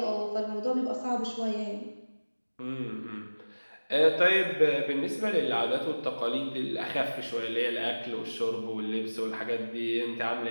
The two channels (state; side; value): inverted; both; correlation -1.00